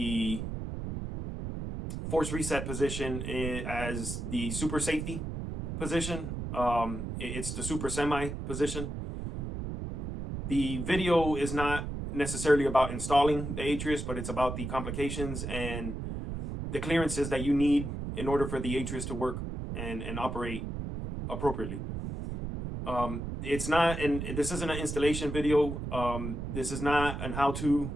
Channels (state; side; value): noise; right; rumble, 5 dB below the sound